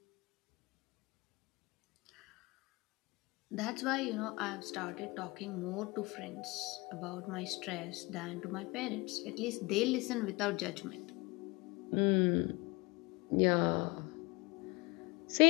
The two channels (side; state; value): right; quieter; 24.9 dB